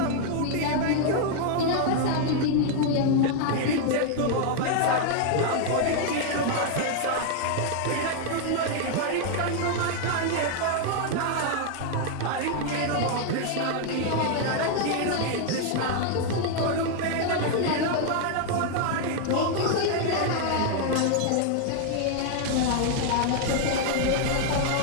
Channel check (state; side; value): different; both; correlation 0.00